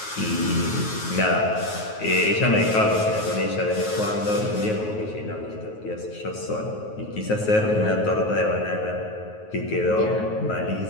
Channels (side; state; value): right; late; 9.4 ms